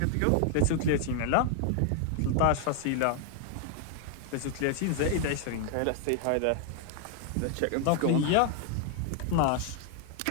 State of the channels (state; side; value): different; both; correlation 0.00